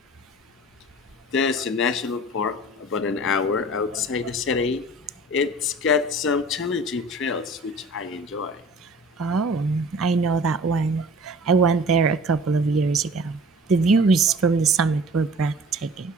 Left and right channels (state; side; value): normal; both; correlation 0.45